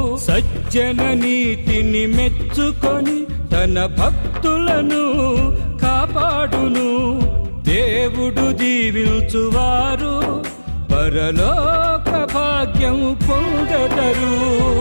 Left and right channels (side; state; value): both; inverted; correlation -1.00